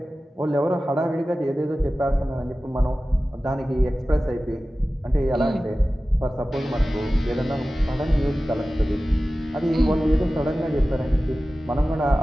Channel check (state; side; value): normal; both; correlation 0.96